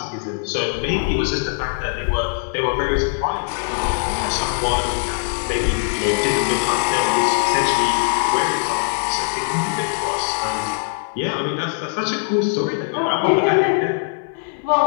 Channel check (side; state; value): right; silent; digital silence